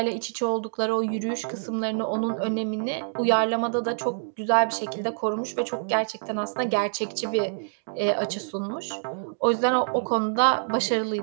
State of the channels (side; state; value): left; silent; digital silence